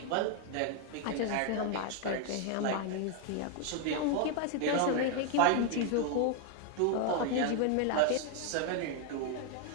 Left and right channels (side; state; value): both; different; correlation 0.00